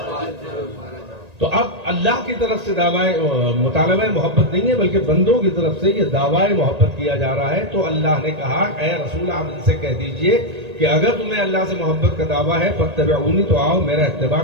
تو اب اللہ کی طرف سے دعوی مطالبہ محبت نہیں ہے بلکہ بندوں کی طرف سے یہ دعوی محبت کیا جا رہا ہے. تو اللہ نے کہا اے رسول آپ ان سے کہہ دیجئے کہ اگر تمہیں اللہ سے محبت کا دعویٰ ہے فاتبعونی، تو آؤ میرا اتباع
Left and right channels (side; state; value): left; late; 1.8 ms